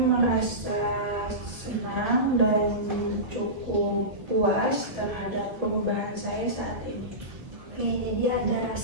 senang dan cukup puas terhadap perubahan saya saat ini. Oke, jadi ada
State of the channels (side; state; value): left; late; 1.8 ms